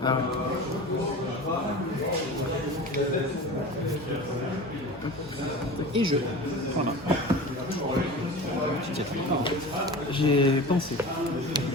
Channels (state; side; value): normal; both; correlation 0.34